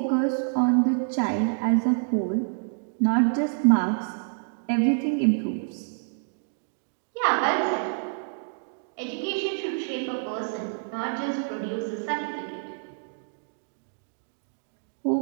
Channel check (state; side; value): silent; left; digital silence